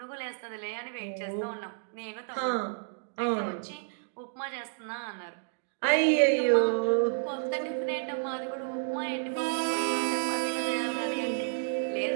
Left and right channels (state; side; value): silent; left; digital silence